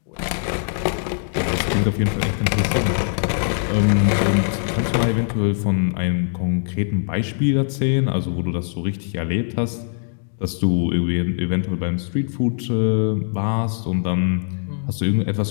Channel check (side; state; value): right; silent; digital silence